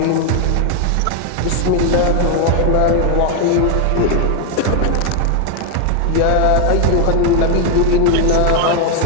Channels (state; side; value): different; both; correlation 0.01